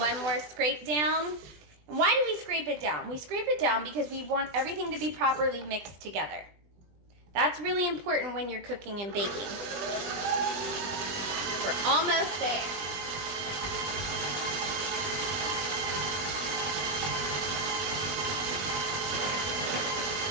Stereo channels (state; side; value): late; left; 20 ms